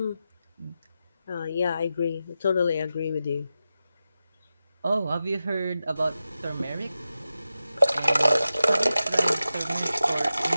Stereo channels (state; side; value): inverted; both; correlation -0.92